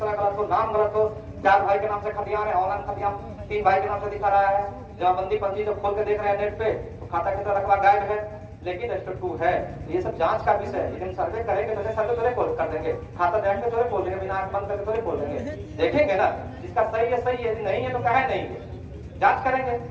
गलत हो, नाम गलत हो, 4 भाई के नाम से खतियान है, ऑनलाइन खतियान 3 भाई के नाम से दिखा रहा है, जमाबंदी पंजी जब खोल के देख रहे हैं नेट पे तो खाता किसरा रकबा गायब है, लेकिन रजिस्टर 2 है। ये सब जांच का विषय है। लेकिन सर्वे करेंगे तो सर्वे थोड़े खोल कर देंगे, खाता देख के थोड़े खोल देंगे, बिना आंख बंद करके थोड़े खोल देंगे, देखेंगे ना जिसका सही है सही है, यदि नहीं है तो काहे नहीं है, जांच करेंगे।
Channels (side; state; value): both; identical; correlation 1.00